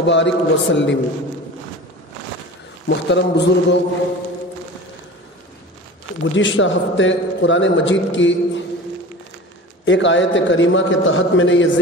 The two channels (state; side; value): normal; both; correlation 0.36